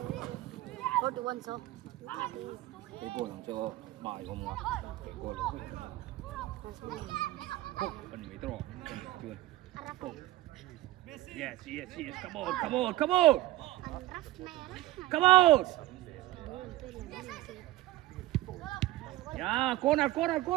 41 số. Cái goal làm cho bài không mà. Cái goal. Hốc bên mấy trò. Chưa. Yes. Come on. Come on. Yeah, corner. Come,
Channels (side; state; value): left; quieter; 16.5 dB